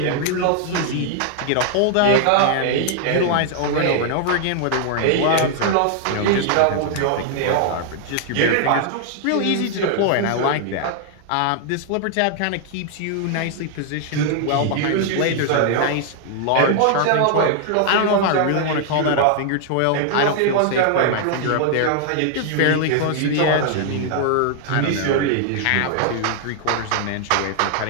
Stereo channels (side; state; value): both; different; correlation 0.00